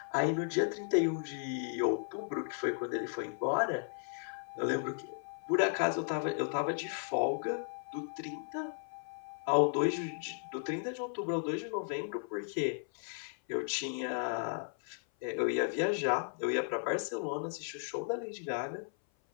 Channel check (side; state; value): right; silent; 54 dB below the other